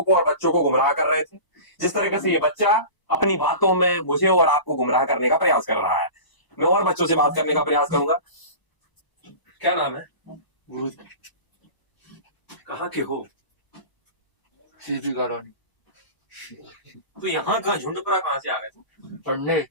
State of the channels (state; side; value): late; right; 1.0 ms